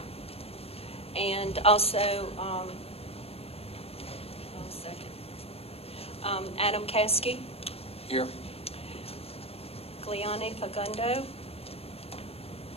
And also, Adam Caskey, Here. Gliane Fagundo.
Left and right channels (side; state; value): right; late; 0.29 ms